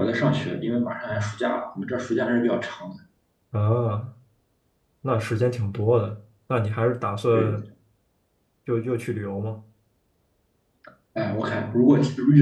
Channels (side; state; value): both; identical; correlation 1.00